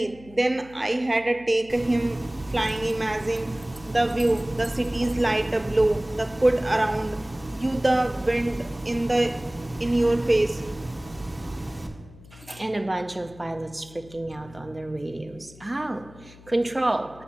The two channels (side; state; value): left; noise; hum, 21 dB below the sound